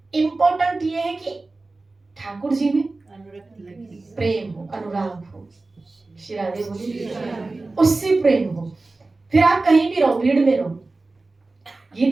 इम्पोर्टेंट ये है कि ठाकुर जी में प्रेम हो, अनुराग हो। श्री राधे बोली, उससे प्रेम हो, फिर आप कहीं भी रहो, भीड़ में रहो।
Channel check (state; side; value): quieter; left; 3.4 dB